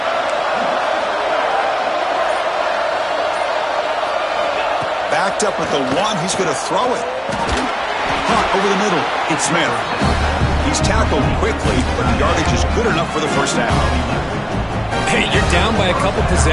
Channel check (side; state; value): both; identical; correlation 1.00